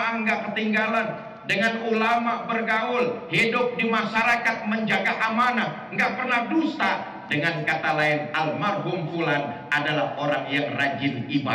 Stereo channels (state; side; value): identical; both; correlation 1.00